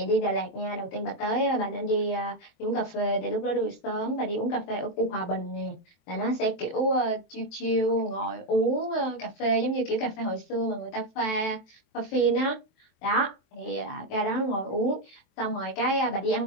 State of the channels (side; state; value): right; late; 23 ms